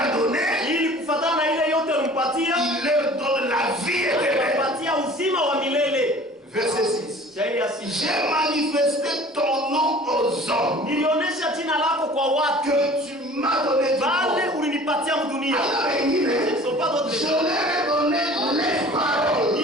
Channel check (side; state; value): both; normal; correlation 0.46